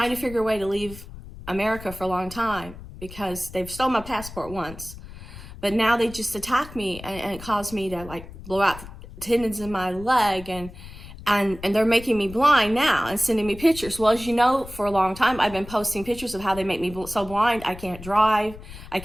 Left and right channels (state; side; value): noise; left; rumble, 15 dB below the sound